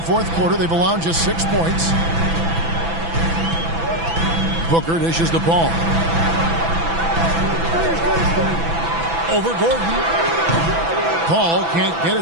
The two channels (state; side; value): late; left; 6.0 ms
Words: fourth quarter, they've allowed just 6 points. Booker dishes the ball. Over Gordon. Paul can't get